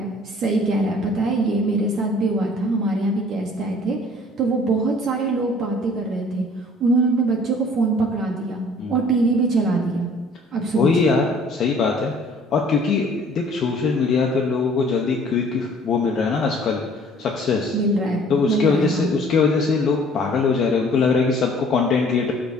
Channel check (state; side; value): normal; both; correlation 0.54